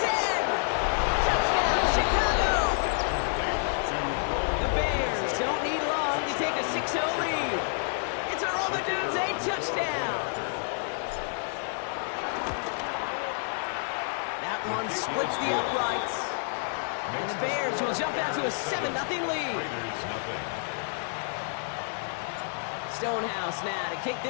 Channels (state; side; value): silent; right; 59 dB below the other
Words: Touchdown, Chicago. The Bears don't need long to take a 6-0 lead. It's a Rome Odunze touchdown. That one splits the uprights. And the Bears will jump out to a 7-0 lead. Raiders nothing. Stonehouse now to kick